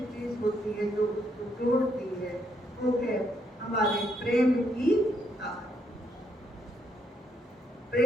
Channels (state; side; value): normal; both; correlation 0.74